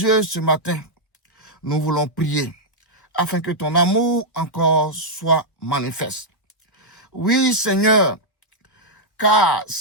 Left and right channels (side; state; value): right; late; 1.4 ms